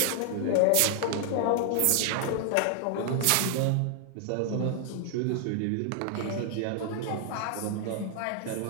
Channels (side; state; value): both; different; correlation 0.00